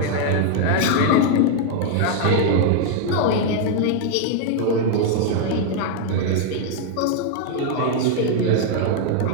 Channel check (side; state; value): both; different; correlation 0.00